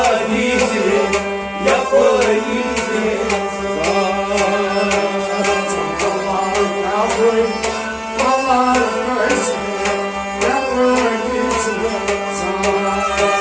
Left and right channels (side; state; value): both; identical; correlation 1.00